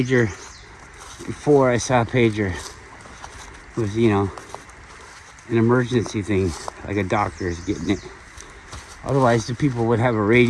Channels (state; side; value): identical; both; correlation 1.00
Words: before I saw a pager. It was, an emergency thing, like a doctor is getting it. Otherwise, the people would have a